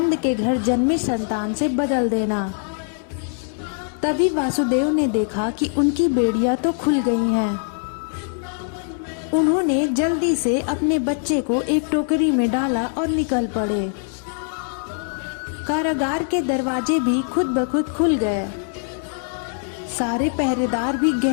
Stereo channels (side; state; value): right; silent; 64 dB below the other